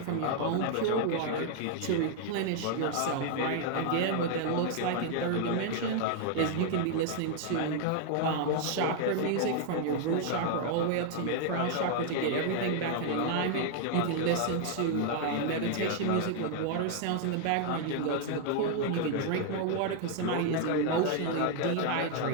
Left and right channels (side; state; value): both; different; correlation 0.00